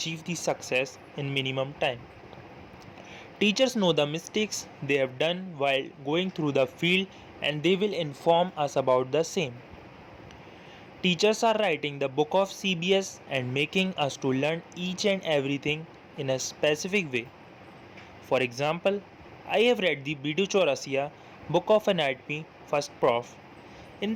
the success in minimum time. Teachers know the mistakes they have done while going through the field and they will inform us about the same. Teachers are writing the book of CBS and making us to learn each and everything in a specific way. For example, I have read the Bidu Chaurasia book of anatomy first prof. In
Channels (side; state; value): both; identical; correlation 1.00